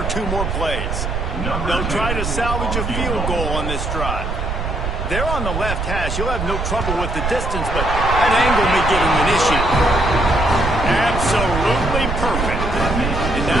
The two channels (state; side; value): noise; right; rumble, 3 dB below the sound